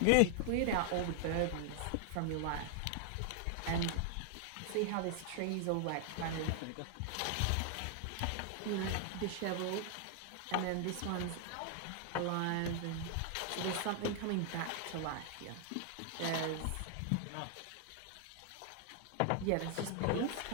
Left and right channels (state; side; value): different; both; correlation 0.00